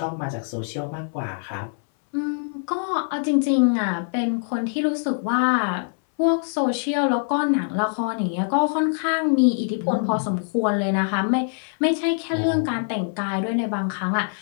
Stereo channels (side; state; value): right; silent; 63 dB below the other